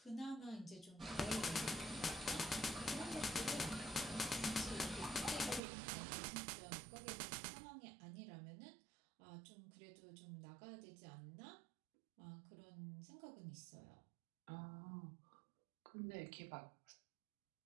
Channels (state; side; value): drops out; left; at 5.6 s